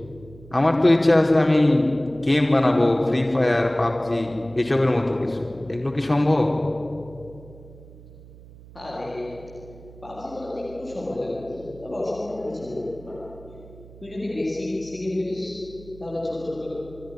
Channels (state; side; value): noise; right; hum, 20 dB below the sound